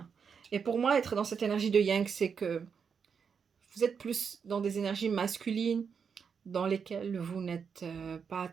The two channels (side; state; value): left; quieter; 6.4 dB